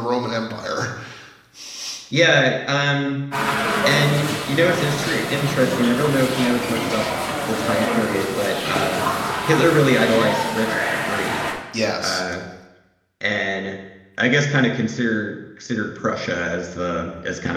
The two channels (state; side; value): identical; both; correlation 1.00